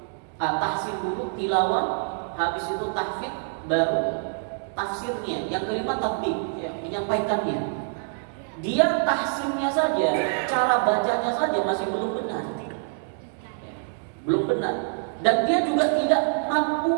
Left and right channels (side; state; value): left; silent; digital silence